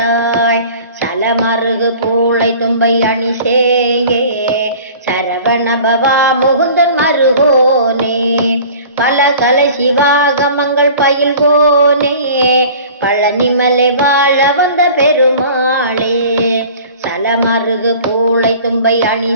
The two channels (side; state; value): both; inverted; correlation -0.44